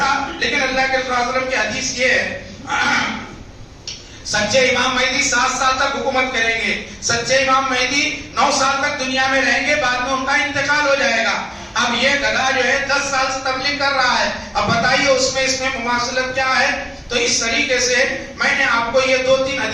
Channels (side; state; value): both; identical; correlation 1.00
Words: لیکن اللہ کے رسول صلی اللہ علیہ وسلم کی حدیث یہ ہے سچے امام مہدی 7 سال تک حکومت کریں گے. سچے امام مہدی 9 سال تک دنیا میں رہیں گے, بعد میں ان کا انتقال ہو جائے گا. اب یہ گدھا جو ہے 10 سال سے تبلیغ کر رہا ہے, اب بتائیے اس میں مماثلت کیا ہے. تو اس طریقے سے میں نے آپ کو یہ 2-3